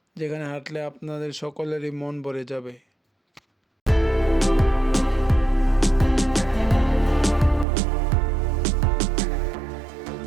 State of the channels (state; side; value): drops out; left; at 7.7 s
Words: যেখানে হাঁটলে আপনাদের সকলেরই মন ভরে যাবে।